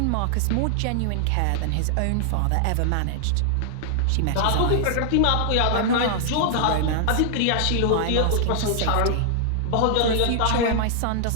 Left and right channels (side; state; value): both; different; correlation -0.01